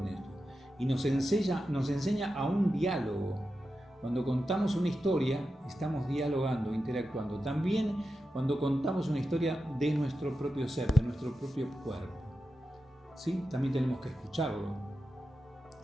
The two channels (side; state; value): both; normal; correlation 0.90